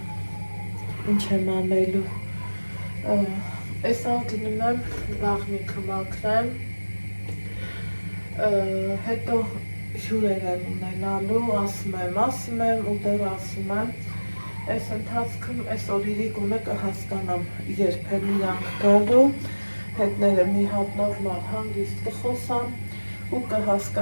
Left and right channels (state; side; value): inverted; both; correlation -1.00